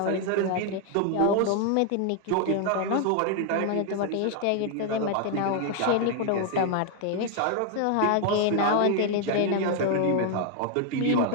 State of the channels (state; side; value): different; both; correlation 0.00